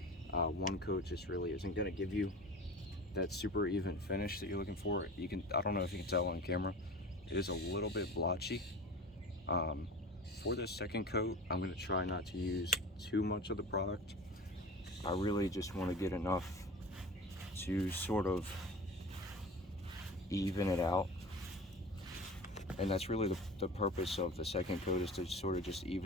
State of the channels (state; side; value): normal; both; correlation 0.35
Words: One coat just really isn't going to give you that super even finish that you're looking for. I don't know if you can tell on camera, it is a little bit blotchy. For this second coat, I'm going to try not to use too much of the product. I really just want to get enough to sort of even it out. And that's really the purpose of the second coat, is to sort of just